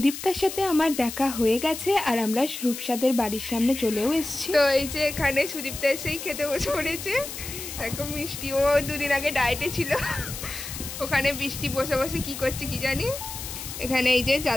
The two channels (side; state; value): left; noise; hiss, 9 dB below the sound